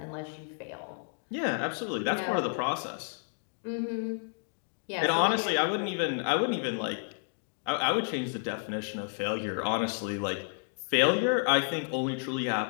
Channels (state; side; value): silent; right; 57 dB below the other